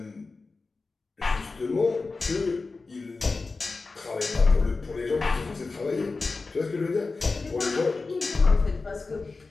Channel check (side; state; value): right; quieter; 3.9 dB